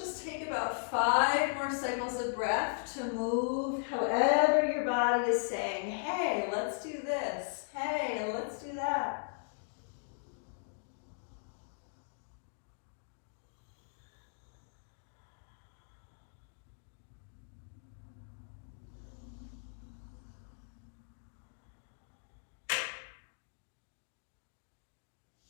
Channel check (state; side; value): silent; right; digital silence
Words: take about 5 more cycles of breath to move however your body is saying, hey, let's do this. Hey, let's do that.